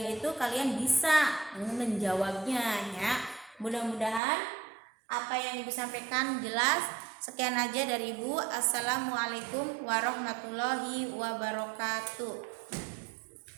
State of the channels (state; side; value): drops out; left; at 4.2 s